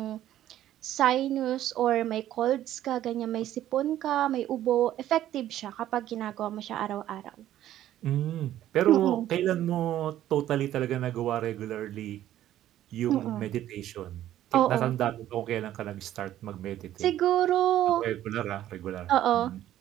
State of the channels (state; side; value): quieter; left; 12.6 dB